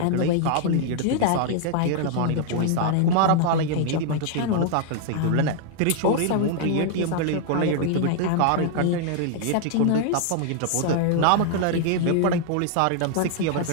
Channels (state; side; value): different; both; correlation 0.00